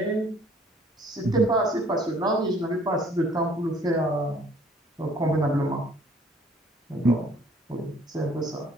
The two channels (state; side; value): normal; both; correlation 0.58